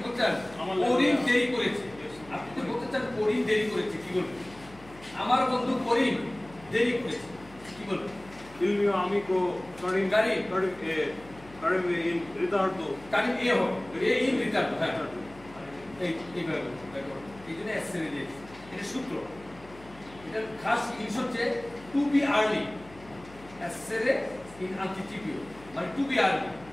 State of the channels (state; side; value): noise; left; hum, 21 dB below the sound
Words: বলতে চান করিম দেরি করেছে, আপনি যদি বলতে চান করিম দেরি করেছে, কি বলবেন? আমার বন্ধু করিম দেরি করেছে, কি বলবেন? Il mio amico Karim in ritardo. Karim e হবে, e in ritardo, হ্যাঁ এইভাবে এই জন্য এসএর দিয়েছি। এটা সূত্র, এটা খাস জিনিস হচ্ছে টু বি আর্লি, এসএর ইন আন্টিসিপিও মানে টু বি আর্লি,